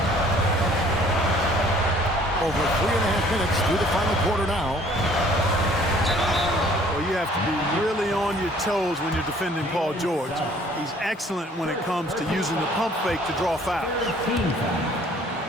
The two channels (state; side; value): normal; both; correlation 0.56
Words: Over 3.5 minutes through the final quarter now. Well, you have to be really on your toes when you're defending Paul George. He's excellent when it comes to using the pump fake to draw fouls. Team foul.